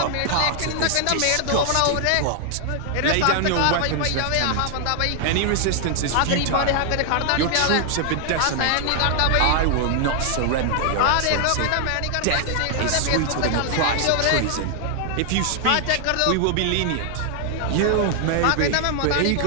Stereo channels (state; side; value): different; both; correlation 0.00